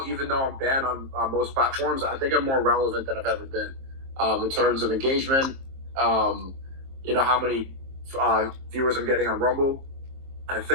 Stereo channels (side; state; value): left; late; 23 ms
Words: even though I'm banned on most platforms, I think I'm more relevant than I've ever been in terms of engagement. How many viewers I'm getting on Rumble. I